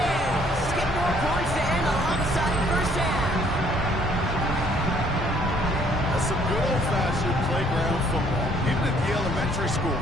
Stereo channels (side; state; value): both; normal; correlation 0.63